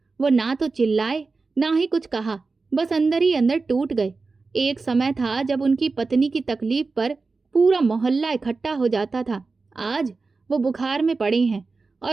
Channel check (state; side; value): quieter; left; 4.1 dB